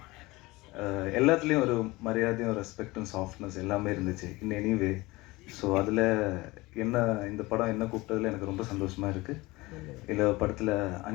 எல்லாத்துலேயும் ஒரு மரியாதையும் ரெஸ்பெக்டும் சாஃப்ட்னஸ் எல்லாமே இருந்துச்சு இன் எனிவே. ஸோ அதில் என்ன இந்த படம் என்ன கூப்பிட்டதில் எனக்கு ரொம்ப சந்தோஷமாக இருக்குது. இதில் படத்தில்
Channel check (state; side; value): quieter; right; 21.5 dB